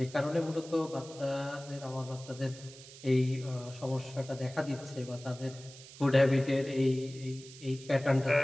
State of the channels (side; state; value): right; noise; hiss, 18 dB below the sound